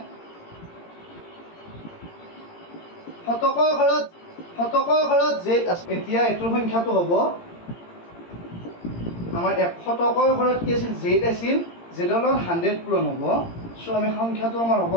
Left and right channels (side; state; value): right; late; 17 ms